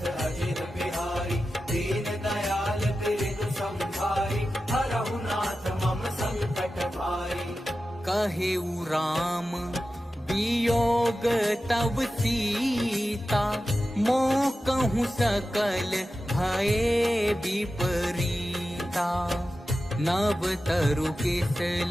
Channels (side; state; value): both; normal; correlation 0.93